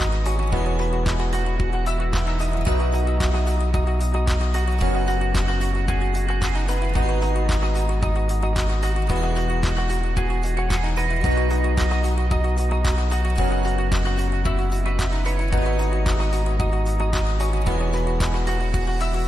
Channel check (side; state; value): both; normal; correlation 0.90